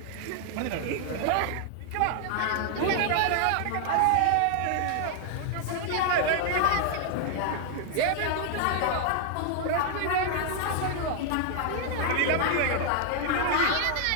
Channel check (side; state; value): both; different; correlation 0.00